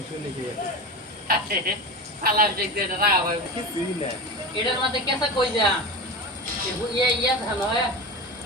নিয়ে গেছে সালাম দেখতে এটা রাখা ভাই কিছুই না এটার মধ্যে কেসা কই যা ইয়া ধান হয়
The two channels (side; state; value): both; normal; correlation 0.26